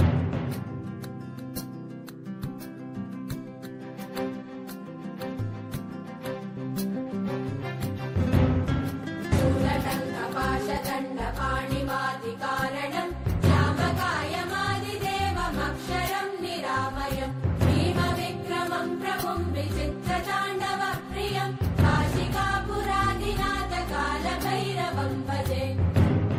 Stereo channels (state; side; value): identical; both; correlation 1.00